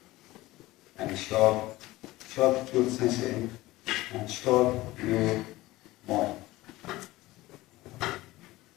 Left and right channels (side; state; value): right; quieter; 18.5 dB